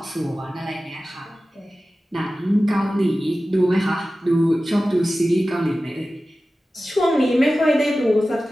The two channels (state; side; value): normal; both; correlation 0.95